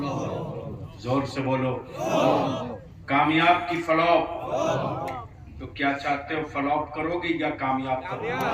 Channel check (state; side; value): identical; both; correlation 1.00